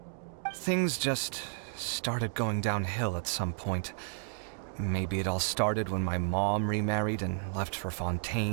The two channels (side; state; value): left; silent; digital silence